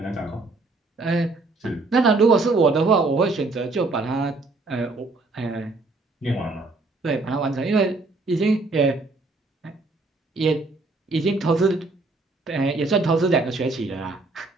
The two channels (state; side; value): quieter; left; 3.4 dB